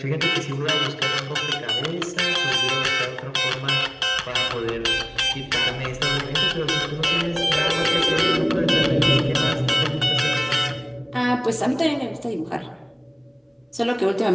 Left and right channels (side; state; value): both; identical; correlation 1.00